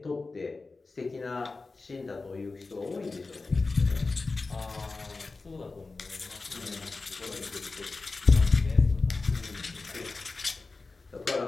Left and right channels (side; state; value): right; quieter; 3.8 dB